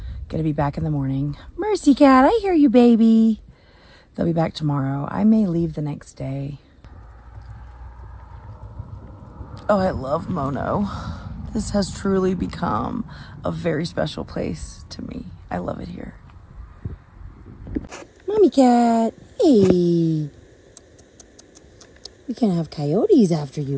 going to be back in the morning. Mercy Cat, I hear you, baby. They'll be back tomorrow. I may leave the next day. Oh, I love Mono. This has truly become a very special place to me. I love it here. Mommy Cat, hey. We can't have coyotes after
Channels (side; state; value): both; identical; correlation 1.00